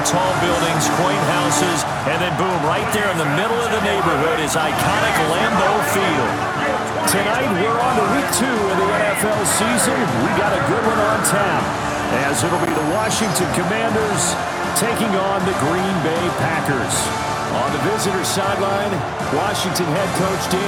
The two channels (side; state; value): both; identical; correlation 1.00